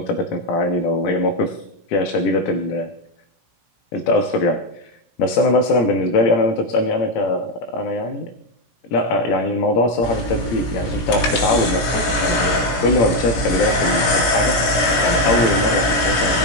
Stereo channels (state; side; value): late; right; 17 ms